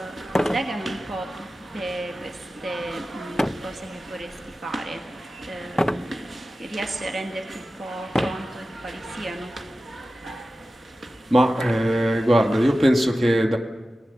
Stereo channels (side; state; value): both; normal; correlation 0.94